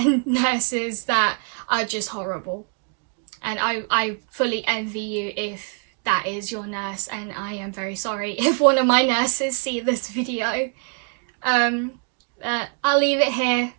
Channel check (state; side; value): quieter; left; 38.1 dB